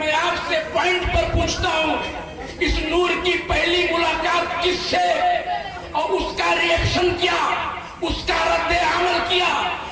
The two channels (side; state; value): both; identical; correlation 1.00